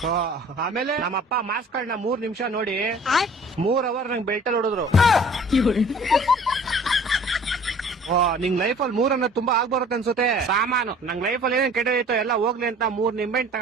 ಆಮೇಲೆ ನಮ್ಮಪ್ಪ ಮಾರ್ಕ್ಸ್ ಗಳನ್ನ 3 ನಿಮಿಷ ನೋಡಿ 3 ಅವರ್ ನಂಗೆ ಬೆಲ್ಟಲ್ಲಿ ಹೊಡೆದ್ರು. ನಿಂಗ್ ಲೈಫ್ ಅಲ್ಲಿ 3 ಅನ್ನೋದು ತುಂಬಾ ಆಗ್ಬರುತ್ತೆ ಅನ್ಸುತ್ತೆ. ಸಾಮಾನು ನಂಗ್ ಲೈಫ್ ಅಲ್ಲಿ ಏನೇನ್ ಕೆಟ್ಟದೈತೋ ಎಲ್ಲ ಹೋಗ್ಲಿ ಅಂತ 3 ನಿಂಬೆಹಣ್ಣು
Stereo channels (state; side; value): normal; both; correlation 0.49